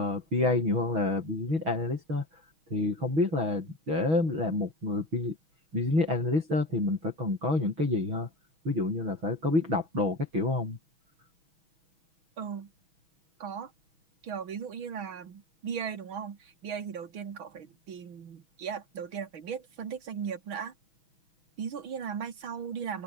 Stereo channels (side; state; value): left; late; 6.2 ms